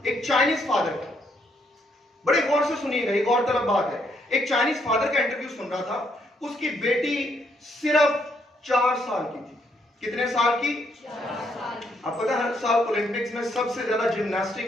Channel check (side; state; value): both; normal; correlation 0.73